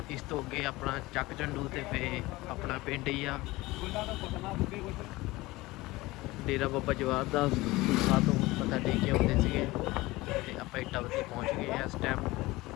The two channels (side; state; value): right; quieter; 20.1 dB